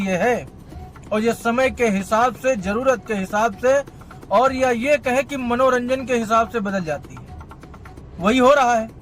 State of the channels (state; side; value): identical; both; correlation 1.00